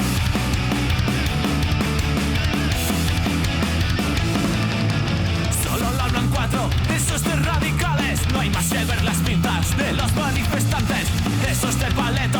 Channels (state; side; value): identical; both; correlation 1.00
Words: Solo lo hablan cuatro, esos de radicales. No hay más que ver las pintas de los manifestantes. Esos de